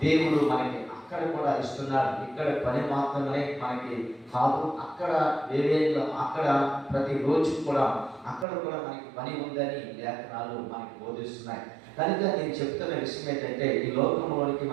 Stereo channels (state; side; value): drops out; left; at 8.5 s